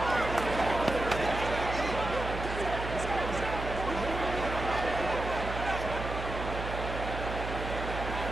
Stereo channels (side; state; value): right; noise; hum, 6 dB below the sound